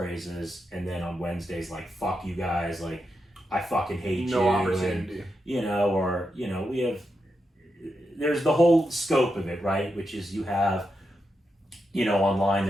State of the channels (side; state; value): both; normal; correlation 0.86